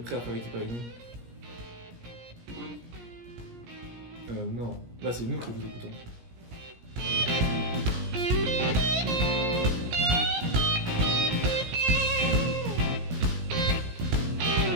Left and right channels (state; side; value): late; left; 17 ms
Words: à faire équipe avec nous? écoute. Non. Là, c'est nous qui vous écoutons.